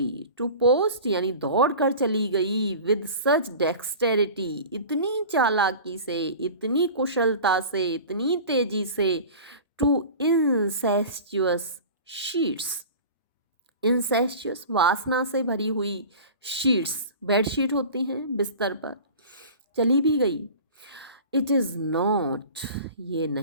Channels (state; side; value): inverted; both; correlation -0.38